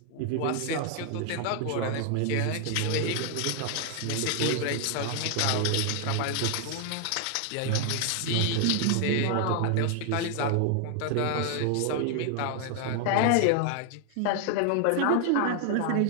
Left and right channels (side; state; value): both; different; correlation 0.00